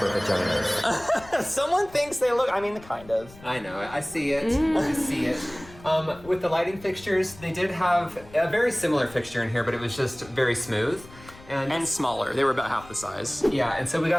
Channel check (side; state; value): left; noise; rumble, 21 dB below the sound